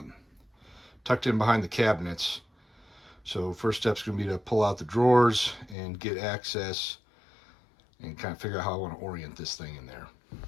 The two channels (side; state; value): right; drops out; at 5.8 s